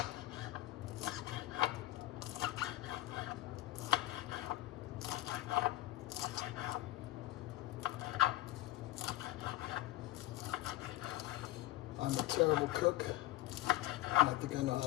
I'm a terrible cook. I think I know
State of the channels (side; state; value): right; quieter; 16.9 dB